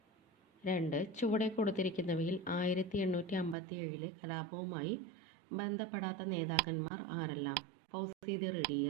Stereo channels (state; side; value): drops out; left; at 3.6 s